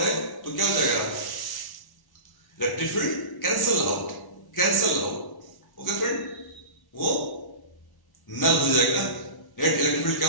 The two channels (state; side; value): late; right; 1.1 ms